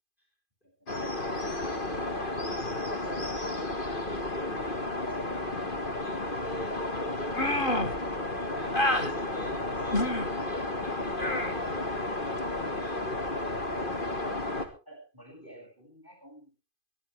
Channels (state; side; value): late; right; 2.5 ms